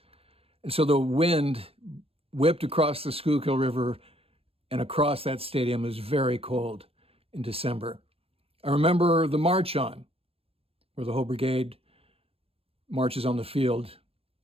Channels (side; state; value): left; late; 0.28 ms